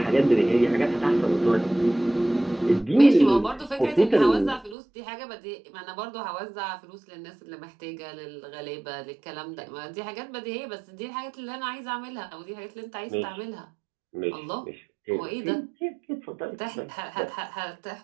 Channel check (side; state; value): left; drops out; at 4.8 s